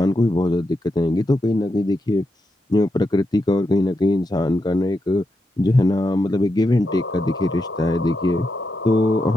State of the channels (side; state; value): both; normal; correlation 0.85